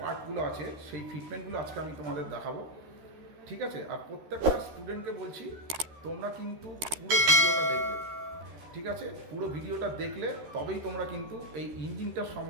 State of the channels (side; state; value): left; late; 13 ms